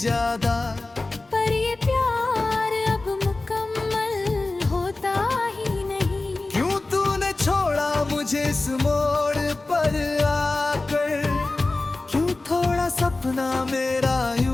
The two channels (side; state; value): right; quieter; 3.2 dB